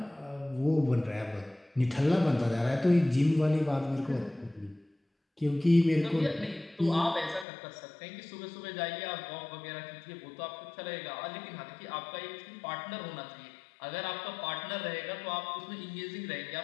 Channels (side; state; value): right; drops out; at 7.5 s